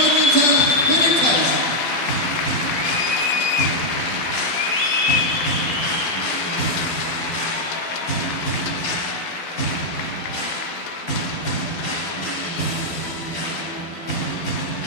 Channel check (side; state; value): right; late; 12 ms